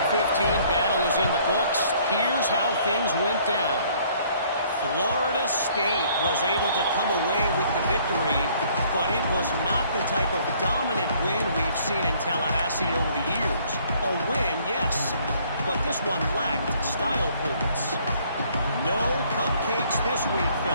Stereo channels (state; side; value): inverted; both; correlation -0.61